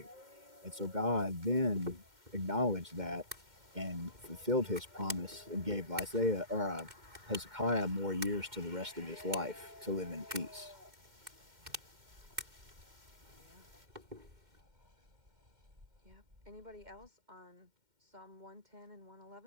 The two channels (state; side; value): late; left; 2.1 ms